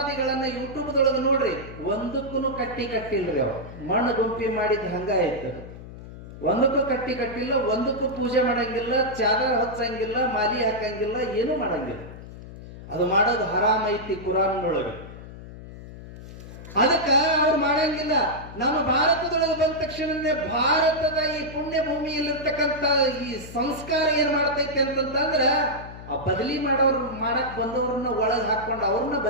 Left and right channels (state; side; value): noise; left; hum, 14 dB below the sound